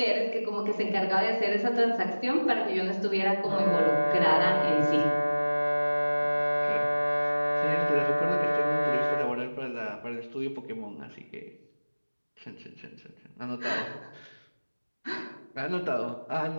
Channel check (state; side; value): inverted; both; correlation -1.00